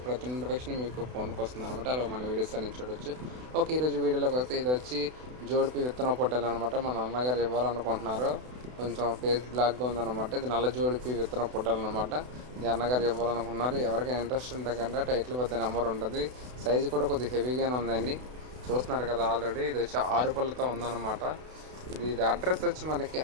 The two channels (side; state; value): left; late; 32 ms